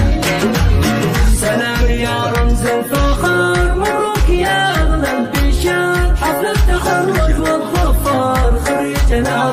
سلام يا رمز الفخر، مبروك يا أغلى البشار، حفل التخرج والظفر، خريجنا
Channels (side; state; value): both; identical; correlation 1.00